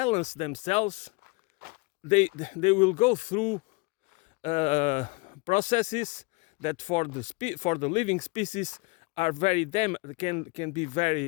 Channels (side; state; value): right; quieter; 27.8 dB